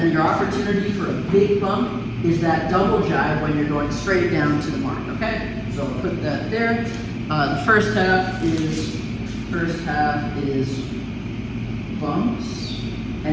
your opportunity for a big bump is that double jibe when you're going straight down to the mark. Okay, so I'll put that there. The first half is bumps,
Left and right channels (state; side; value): identical; both; correlation 1.00